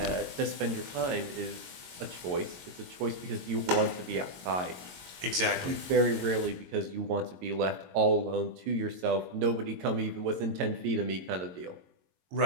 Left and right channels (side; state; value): left; late; 22 ms